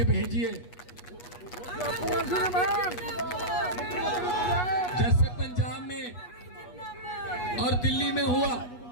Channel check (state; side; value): late; right; 8.3 ms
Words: भेजिए। जैसे पंजाब में और दिल्ली में हुआ,